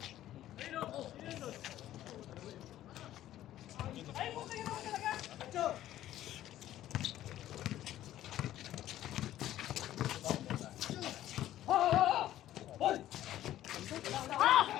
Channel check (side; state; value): right; quieter; 13.2 dB